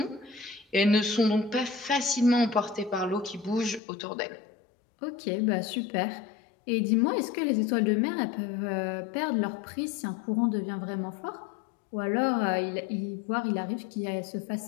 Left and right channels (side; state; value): right; drops out; at 3.8 s